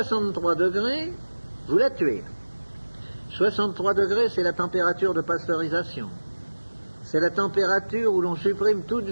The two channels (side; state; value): both; inverted; correlation -1.00